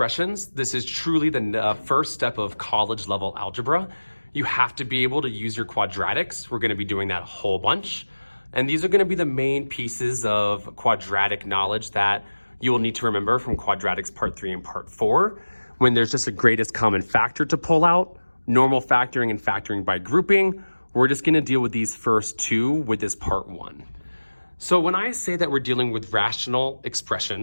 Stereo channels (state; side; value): inverted; both; correlation -1.00